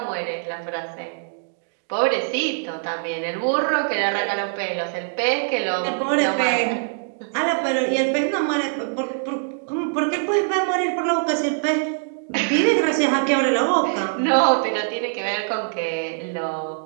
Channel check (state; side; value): silent; left; digital silence